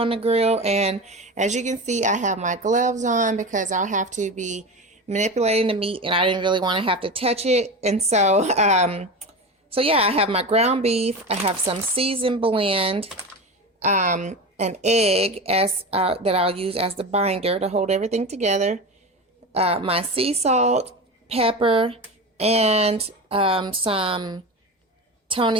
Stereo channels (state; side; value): normal; both; correlation 0.25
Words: the grill. And as you can see, I have my gloves on because I'll have to be manipulating the meat and I didn't really want to have to touch it. And so, yeah, I have my ground beef. I have some seasoned blend, an egg as that I'll use as the binder to hold everything together, my sea salt, pepper, and some